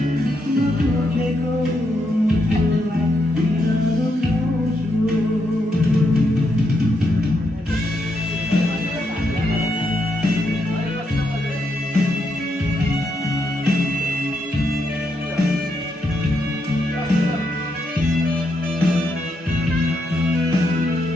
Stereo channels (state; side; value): normal; both; correlation 0.80